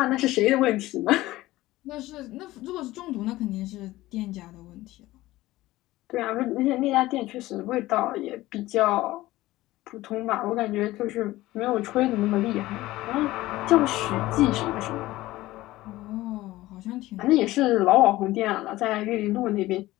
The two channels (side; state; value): right; quieter; 17.3 dB